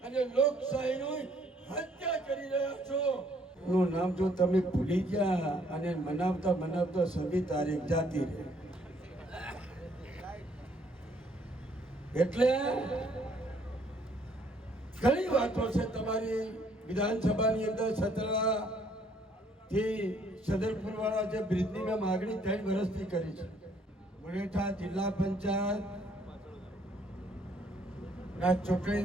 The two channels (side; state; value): both; normal; correlation 0.65